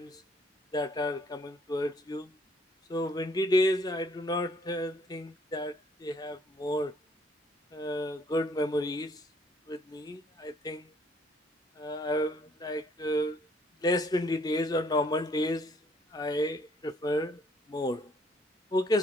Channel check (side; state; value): both; normal; correlation 0.64